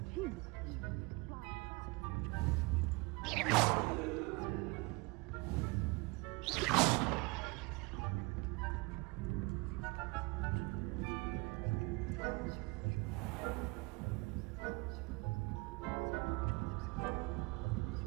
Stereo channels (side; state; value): left; quieter; 25.9 dB